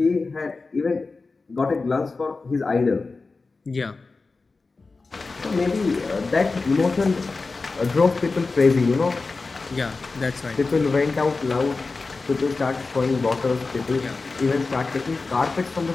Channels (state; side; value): quieter; right; 3.9 dB